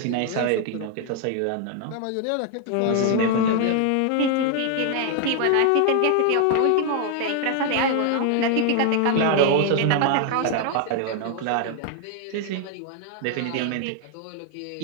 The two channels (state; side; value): different; both; correlation 0.00